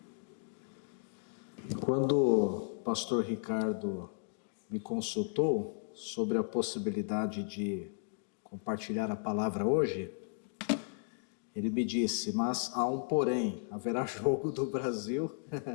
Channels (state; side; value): silent; right; digital silence